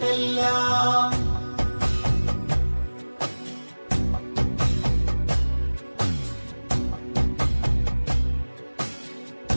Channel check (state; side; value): inverted; both; correlation -1.00